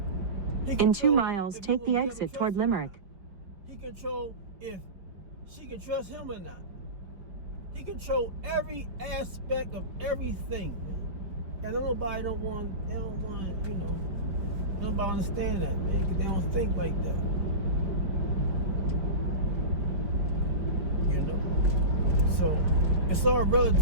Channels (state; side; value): late; left; 5.0 ms